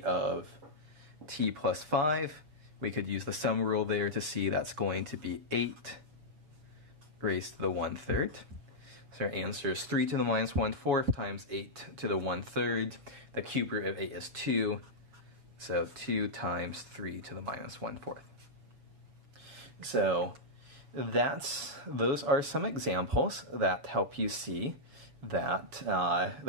of t plus 5. We could use the sum rule there to see that's going to be 8 raised to the 1/3. So our answer is 3 to the minus 1/4 times 8 to the 1/3. The cube root of 8 is 2, so 2 times 3 to the minus 1/4. So those are some examples that help you see that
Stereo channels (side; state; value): left; late; 6.6 ms